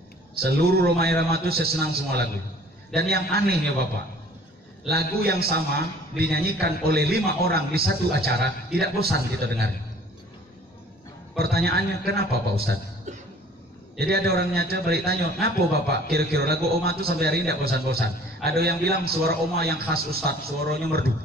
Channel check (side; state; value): both; normal; correlation 0.51